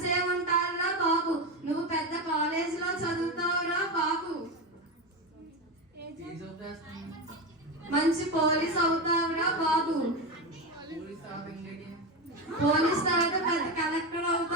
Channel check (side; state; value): both; normal; correlation 0.17